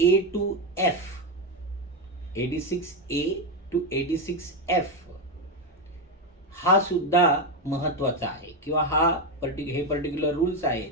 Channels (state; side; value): normal; both; correlation 0.09